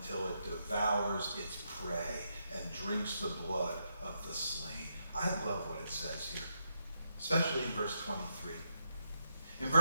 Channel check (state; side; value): inverted; both; correlation -0.81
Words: it devours its prey and drinks the blood of the slain. I love what it says here, especially in verse 23. In